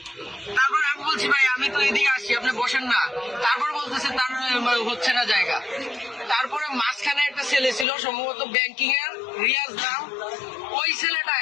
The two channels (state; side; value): drops out; right; at 7.9 s